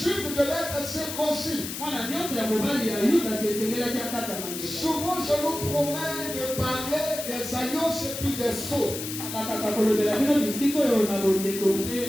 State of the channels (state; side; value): noise; left; hiss, 7 dB below the sound